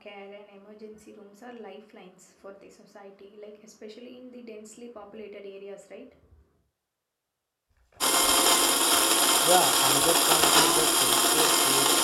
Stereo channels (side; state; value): both; identical; correlation 1.00